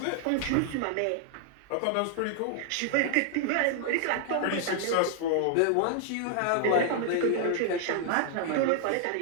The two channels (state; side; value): different; both; correlation 0.00